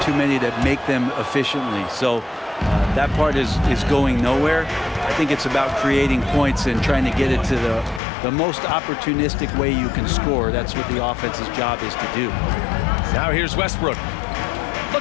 too many that make them efficiently. So that part is going nowhere. I think it's about creating points and trying to get it to the most opportunistic way you can score. That's what the offense's job is to do. Now here's Westbrook.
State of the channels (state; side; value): drops out; right; at 8.0 s